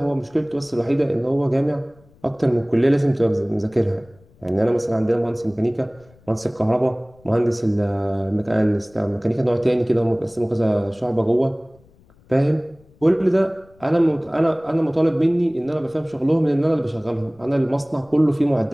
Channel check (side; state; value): left; noise; rumble, 29 dB below the sound